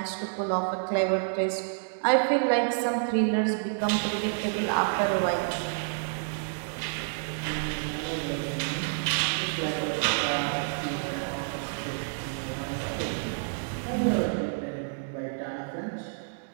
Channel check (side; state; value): left; silent; digital silence